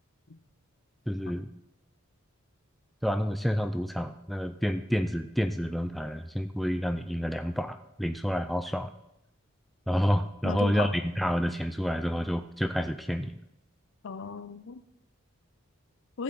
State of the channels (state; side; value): normal; both; correlation 0.93